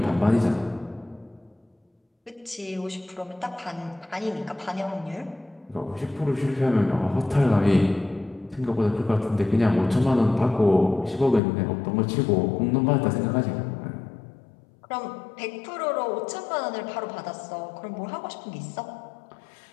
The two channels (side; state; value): right; drops out; at 11.4 s